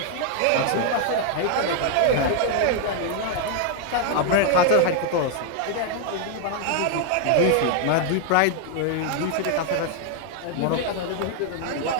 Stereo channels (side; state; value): both; different; correlation 0.00